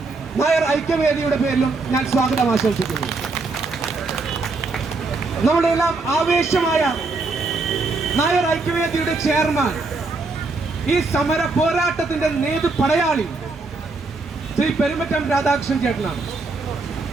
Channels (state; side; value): quieter; left; 3.7 dB